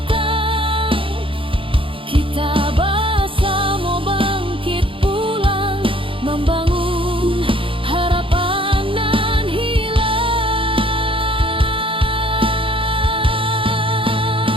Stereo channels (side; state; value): left; late; 0.25 ms